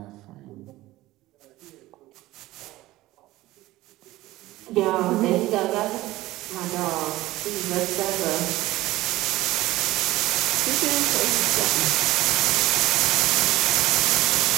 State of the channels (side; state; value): left; quieter; 17.3 dB